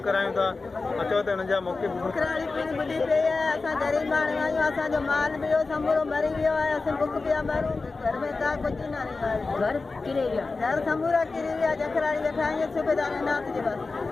करायूं था। अचो त हुननि जा मौक़े कराड़ी पिणी ॿुधी पई आहे। असां ग़रीब माण्हू आहियूं, असांजो माल बि वियो समूरो मरी वियो आहे। असां बुख पिया मारूं, घर में का कुझु न रहियो आहे। घर किरे विया, घर समूरा किरी विया। जखराड़ी वेठा आहियूं सूबेदार नाथ जे बस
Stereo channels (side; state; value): right; quieter; 3.9 dB